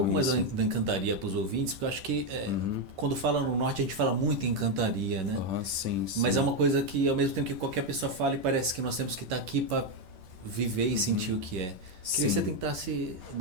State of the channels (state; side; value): late; left; 11 ms